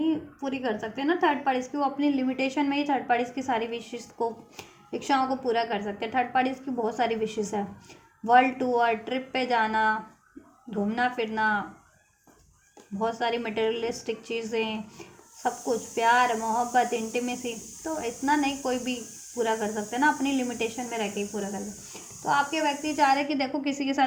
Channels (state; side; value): identical; both; correlation 1.00